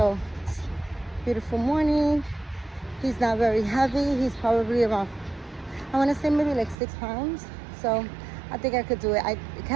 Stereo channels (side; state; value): left; drops out; at 6.8 s